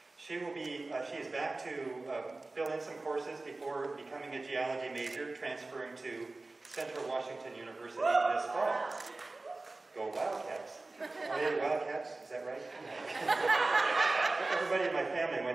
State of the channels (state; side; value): quieter; left; 3.2 dB